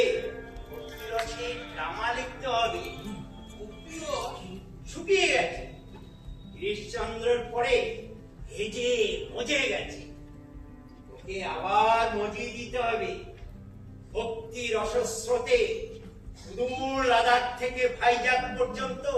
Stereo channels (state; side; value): identical; both; correlation 1.00